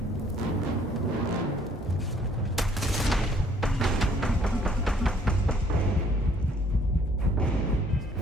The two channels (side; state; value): both; normal; correlation 0.61